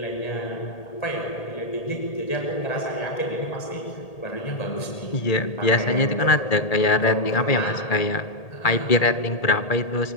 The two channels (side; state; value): right; late; 1.8 ms